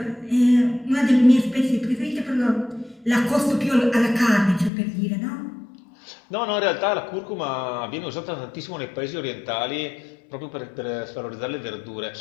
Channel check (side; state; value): right; drops out; at 4.7 s